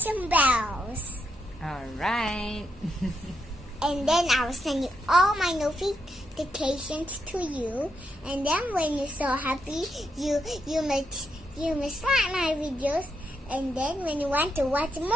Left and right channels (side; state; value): both; normal; correlation 0.81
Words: bells. Alright. And then I will send you all my notifications to you. And then when you're so happy, you must like my videos. And then when you want to watch